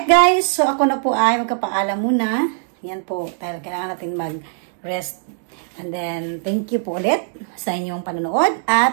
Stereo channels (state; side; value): silent; left; digital silence